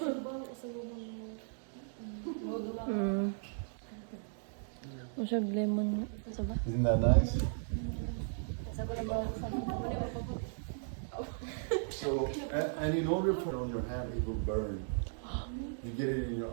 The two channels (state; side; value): silent; left; digital silence